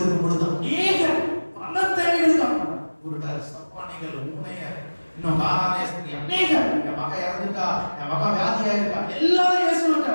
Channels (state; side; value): inverted; both; correlation -1.00